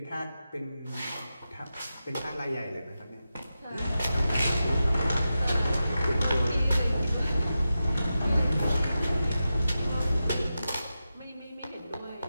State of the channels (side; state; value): both; inverted; correlation -0.91